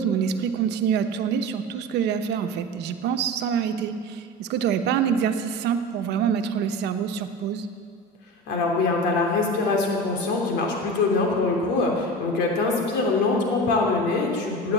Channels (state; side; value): normal; both; correlation 0.30